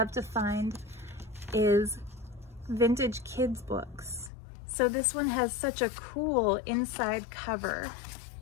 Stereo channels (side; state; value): right; drops out; at 4.3 s